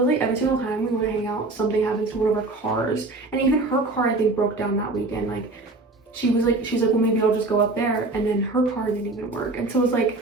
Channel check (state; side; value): quieter; left; 3.2 dB